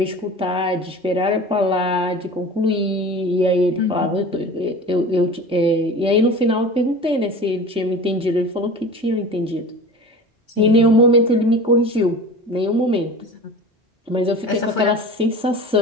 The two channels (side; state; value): both; normal; correlation 0.36